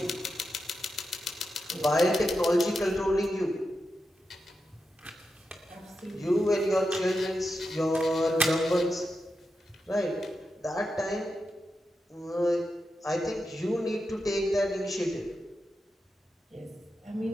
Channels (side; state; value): both; normal; correlation 0.88